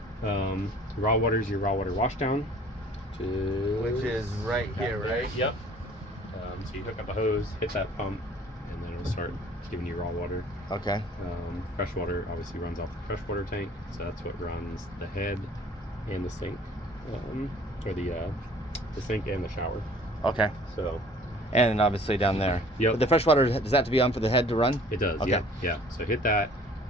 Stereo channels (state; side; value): normal; both; correlation 0.52